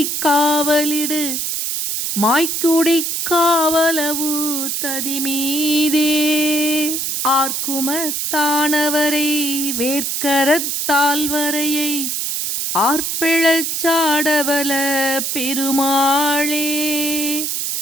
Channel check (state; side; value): noise; right; hiss, 1 dB below the sound